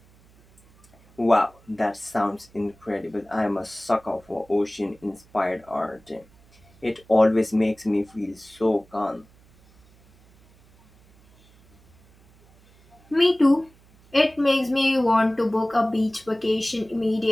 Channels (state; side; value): noise; right; hum, 29 dB below the sound